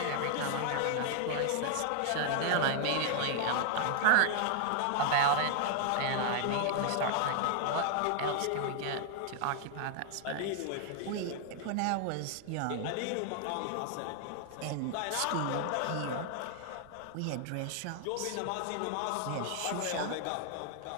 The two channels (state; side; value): different; both; correlation 0.00